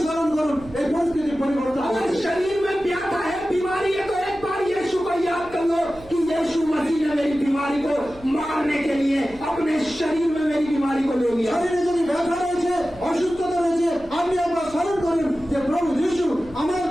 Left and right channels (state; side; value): noise; right; hum, 22 dB below the sound